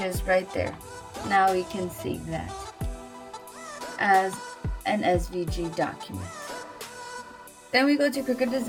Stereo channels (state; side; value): identical; both; correlation 1.00